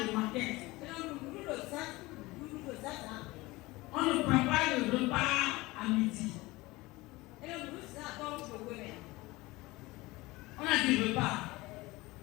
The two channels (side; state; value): right; quieter; 21.0 dB